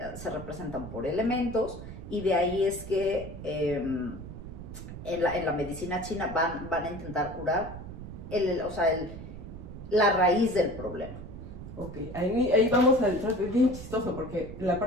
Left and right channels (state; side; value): noise; right; rumble, 11 dB below the sound